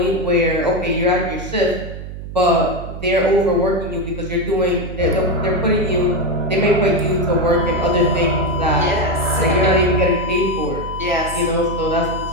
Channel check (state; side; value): noise; right; hum, 10 dB below the sound